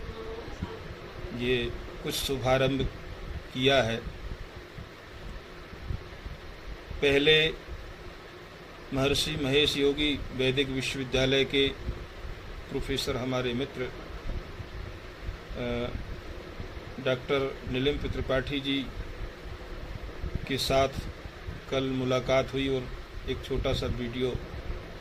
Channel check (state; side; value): identical; both; correlation 1.00